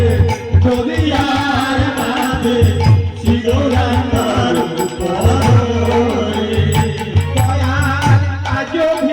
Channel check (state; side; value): identical; both; correlation 1.00